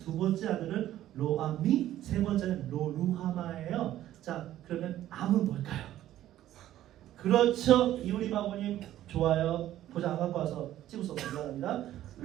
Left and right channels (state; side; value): quieter; left; 13.1 dB